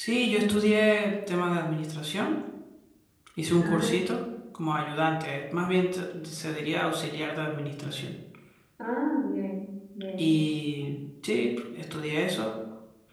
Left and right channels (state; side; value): identical; both; correlation 1.00